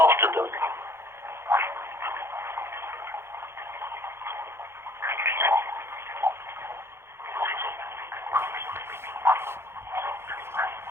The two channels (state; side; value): late; left; 0.12 ms